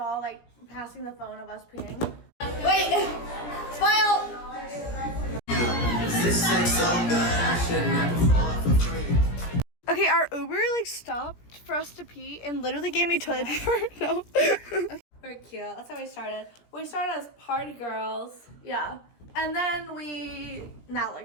like passing the phone of us peeing. Wait, smile. This sex so good, I should never fall for free. Okay, our Uber like stopped for us to pee and literally gave me toilet paper. No. We're cute. That's how we started. We started as party girls. Yeah. And then now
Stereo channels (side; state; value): right; late; 17 ms